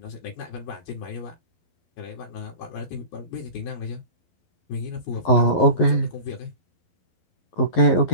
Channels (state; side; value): late; right; 11 ms